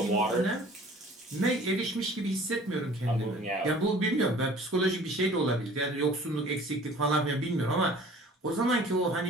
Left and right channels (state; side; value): normal; both; correlation 0.48